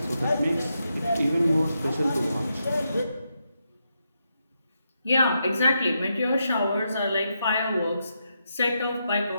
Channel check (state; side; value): inverted; both; correlation -0.83